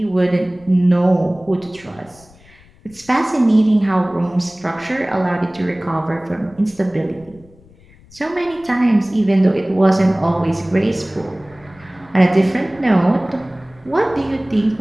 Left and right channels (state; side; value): noise; left; rumble, 27 dB below the sound